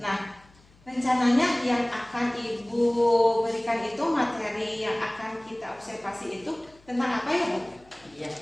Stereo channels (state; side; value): noise; left; hum, 28 dB below the sound